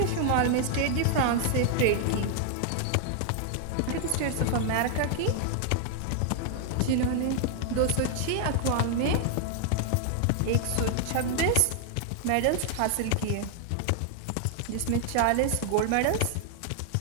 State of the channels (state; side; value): different; both; correlation 0.00